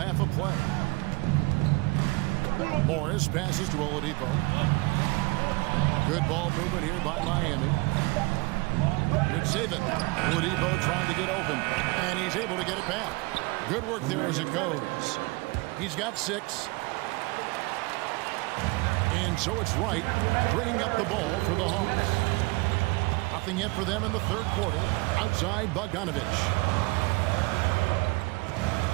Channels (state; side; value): quieter; left; 25.2 dB